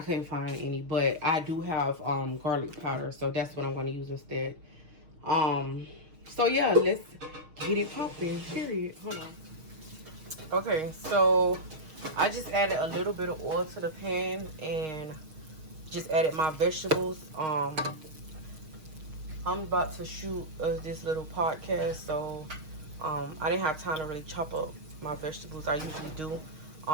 couldn't find any, but I do have garlic powder, so that's what I'm gonna use instead. So yeah, let's get it popping, period. Hold on. Okay, so I just added a little bit of oil to the pan and just added my vegetables. I'm about to shoot this little podcast, so I didn't have time to really chop up my vegetables. I usually do.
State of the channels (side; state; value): left; late; 6.4 ms